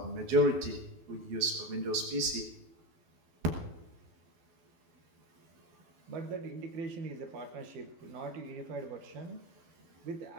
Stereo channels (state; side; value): late; left; 12 ms